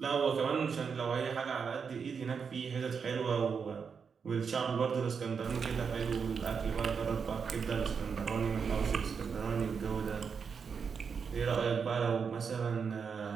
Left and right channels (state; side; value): quieter; left; 6.1 dB